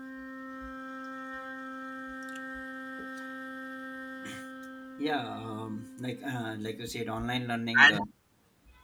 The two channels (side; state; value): both; identical; correlation 1.00